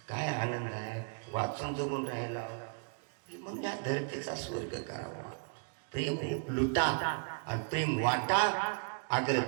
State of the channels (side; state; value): left; quieter; 39.4 dB